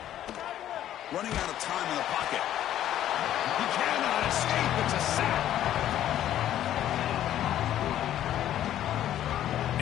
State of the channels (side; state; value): right; quieter; 11.8 dB